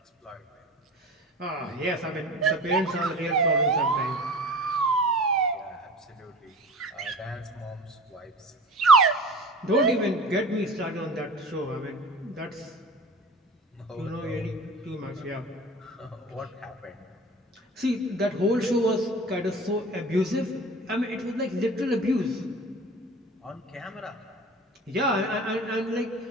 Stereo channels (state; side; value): normal; both; correlation 0.38